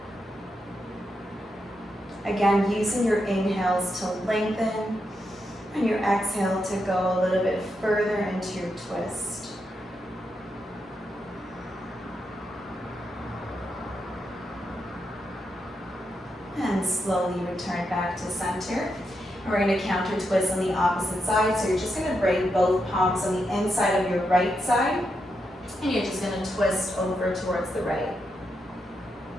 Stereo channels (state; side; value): normal; both; correlation 0.84